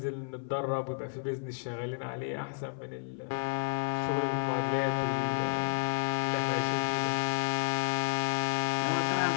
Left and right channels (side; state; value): right; silent; 56 dB below the other